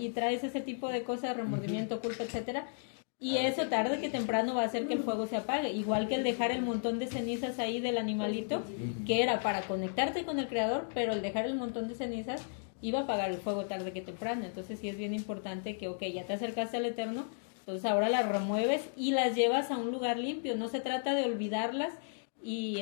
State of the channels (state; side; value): silent; right; digital silence